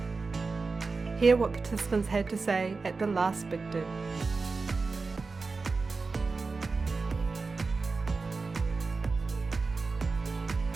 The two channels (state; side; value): quieter; left; 4.2 dB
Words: Hear what participants had to say at the last Big Do.